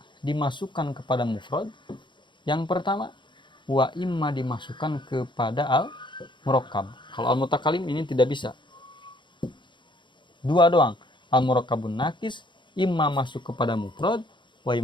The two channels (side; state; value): right; late; 0.23 ms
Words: dimasukkan kepada mufrad. Yang pertama, wa imma dimasukkan kepada al-murakkab. Kalau al-mutakalim ini tidak bisa. 2 doang. Al-murakkabun nakis imma masuk kepada mufrad, wa